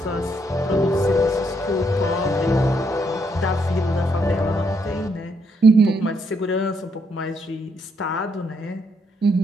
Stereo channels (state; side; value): normal; both; correlation 0.75